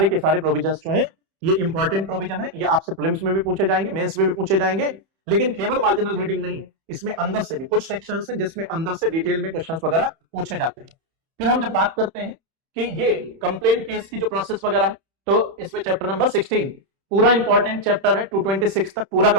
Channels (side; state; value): left; late; 31 ms